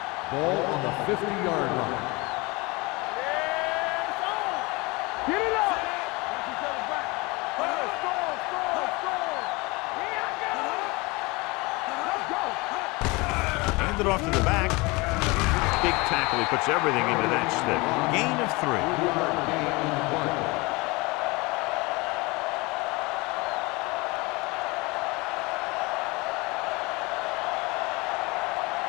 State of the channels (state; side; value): quieter; right; 25.0 dB